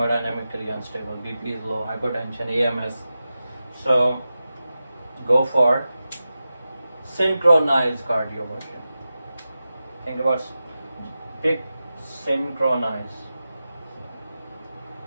unstable, BP is low, hypertension, AMS. So go for synchronized cardioversion. Think about, pick synchronized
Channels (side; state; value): both; inverted; correlation -0.93